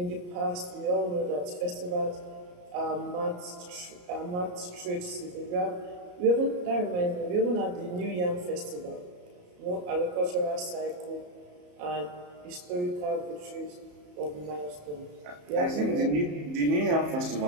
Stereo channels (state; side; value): late; left; 34 ms